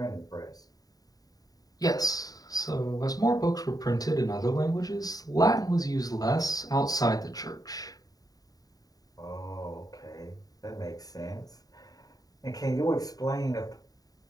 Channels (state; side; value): late; right; 0.18 ms